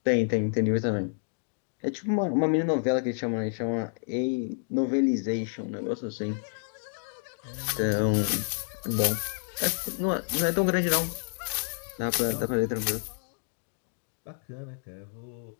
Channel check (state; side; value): silent; right; digital silence